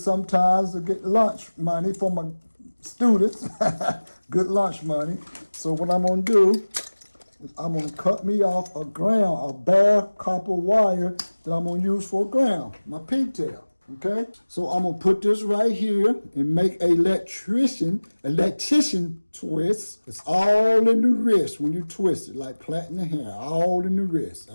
to get lunch money for my students. Good lunch money. So what I'm going to do is I'm going to cut me off a bare copper wire that I'm going to use for a ground, my pigtail. Okay? So I'm going to put this right here and make an electrician twist. It's all in the wrist when you twist it, like plaiting the hair, all in the wrist.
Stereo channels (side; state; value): both; inverted; correlation -1.00